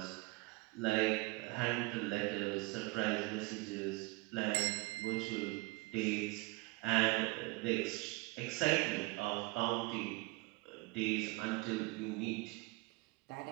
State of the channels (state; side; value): quieter; left; 24.8 dB